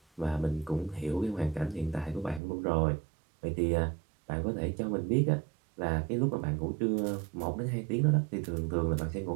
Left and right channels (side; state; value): left; drops out; at 2.4 s